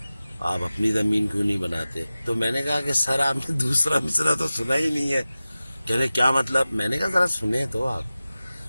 آپ اپنی زمین کیوں نہیں بناتے؟ تو میں نے کہا کہ سر آپ نے دوسرا مصرع تو سنا ہی نہیں ہے۔ کہنے کیا مطلب؟ میں نے کہا ذرا سنیں تو آپ۔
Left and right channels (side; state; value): both; inverted; correlation -0.96